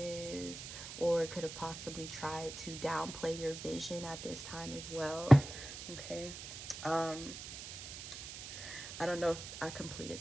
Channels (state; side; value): noise; right; hiss, 10 dB below the sound